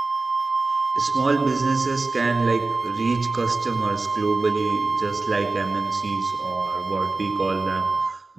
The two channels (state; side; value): quieter; left; 3.6 dB